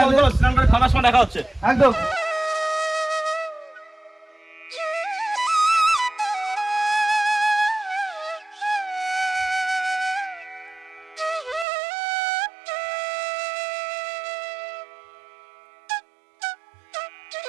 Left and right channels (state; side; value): drops out; left; at 11.7 s